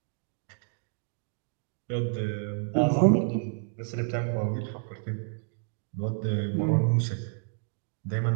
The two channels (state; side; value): silent; left; 58 dB below the other